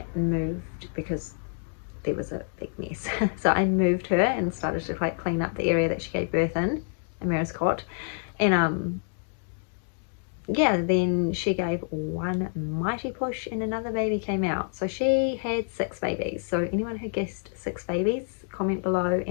moved, because there was a big mess. So I moved her and started to like clean up the area that she gave birth in Amira's cot. And yeah, then she gave one mighty push and another baby came out. So she had 6 babies. So anyone who guessed 6 babies, comment below,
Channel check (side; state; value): right; silent; digital silence